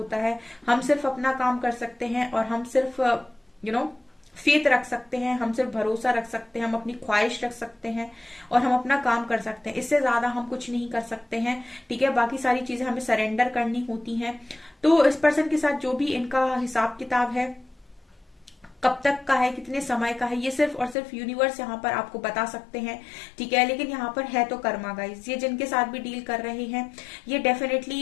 है। हम सिर्फ अपना काम कर सकते हैं और हम सिर्फ फेथ रख सकते हैं, हम सिर्फ भरोसा रख सकते हैं, हम अपनी ख्वाहिश रख सकते हैं और हम अपना काम कर सकते हैं, इससे ज्यादा हम कुछ नहीं कर सकते हैं, ठीक है। बाकी सारी चीजें हमें सरेंडर करनी होती हैं। तो इस पर्सन के साथ जो भी इनका हिसाब किताब है, कब तक का है, कितने समय का है, ये सिर्फ और सिर्फ यूनिवर्स यहाँ पर आपको बता सकते हैं, ठीक है। लेकिन यहाँ पर है तो कर्मा गाइस, ये जिनके साथ भी डील कर रहे हैं ये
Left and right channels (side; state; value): right; drops out; at 21.0 s